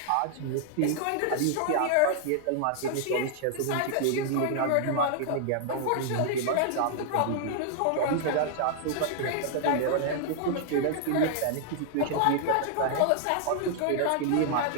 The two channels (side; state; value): both; different; correlation 0.00